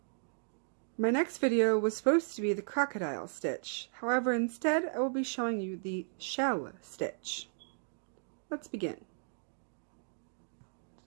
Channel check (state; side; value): silent; left; digital silence